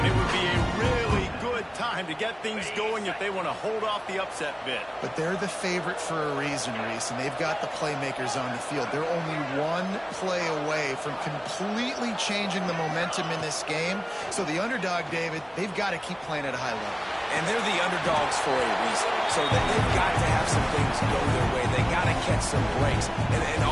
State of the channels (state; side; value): identical; both; correlation 1.00